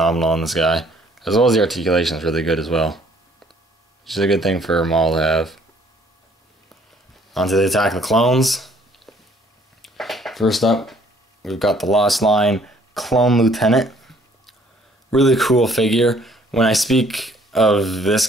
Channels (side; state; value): both; normal; correlation 0.61